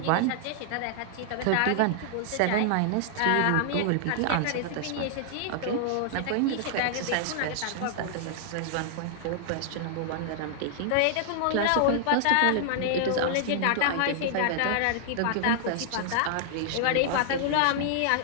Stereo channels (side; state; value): both; different; correlation -0.01